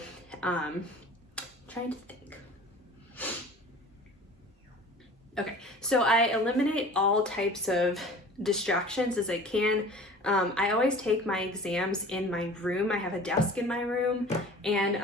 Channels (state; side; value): normal; both; correlation 0.43